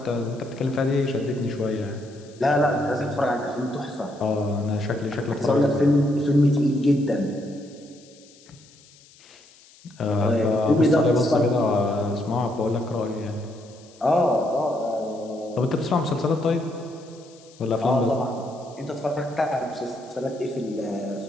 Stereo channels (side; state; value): left; noise; hiss, 26 dB below the sound